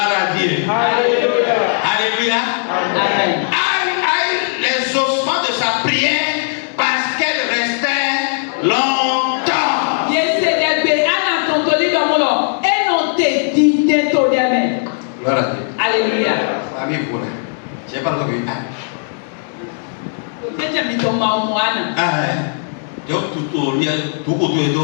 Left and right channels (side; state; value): right; silent; digital silence